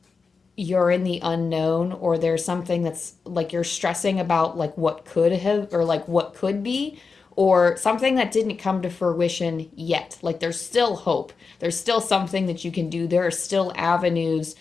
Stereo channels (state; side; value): quieter; right; 4.8 dB